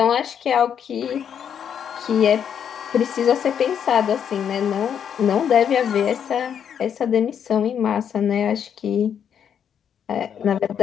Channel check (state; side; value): quieter; right; 8.3 dB